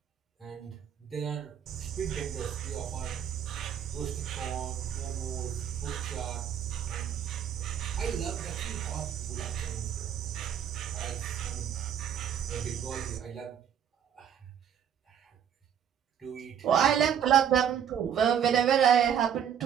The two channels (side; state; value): left; quieter; 8.8 dB